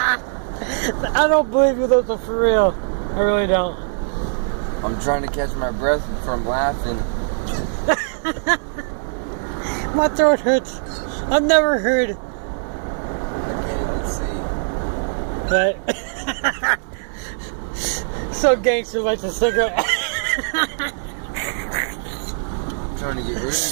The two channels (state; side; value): silent; left; 65 dB below the other